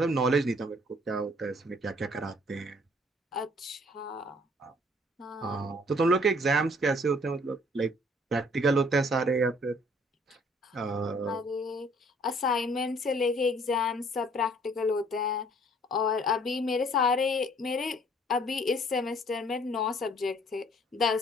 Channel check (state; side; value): normal; both; correlation 0.59